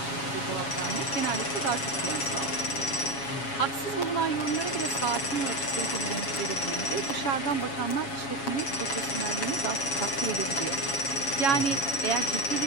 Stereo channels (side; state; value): right; late; 7.2 ms